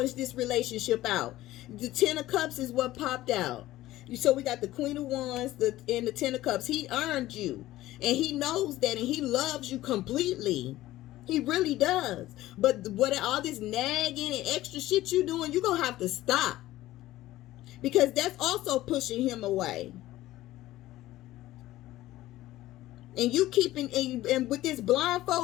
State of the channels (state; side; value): quieter; right; 15.8 dB